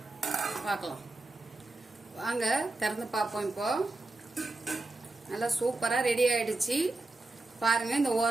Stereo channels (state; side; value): quieter; left; 3.0 dB